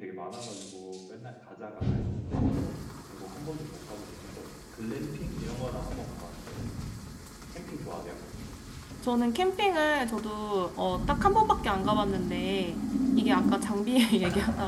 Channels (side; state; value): both; identical; correlation 1.00